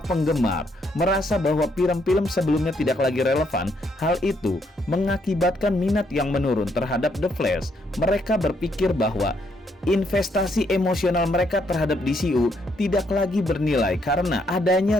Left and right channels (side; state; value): both; normal; correlation 0.73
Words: merasa bahwa film-film sebelumnya tidak lagi relevan, hal itu mengakibatkan minat yang menurun terhadap The Flash. Mereka berpikir bahwa investasi emosional mereka terhadap DCU tidak lagi bernilai karena